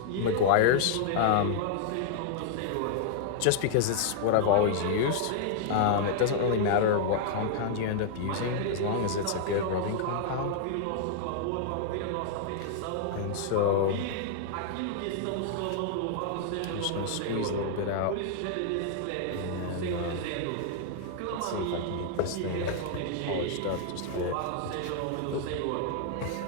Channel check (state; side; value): different; both; correlation -0.01